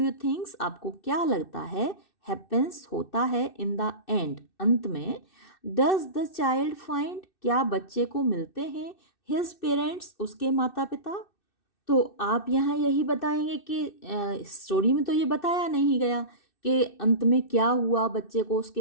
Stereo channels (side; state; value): right; late; 2.6 ms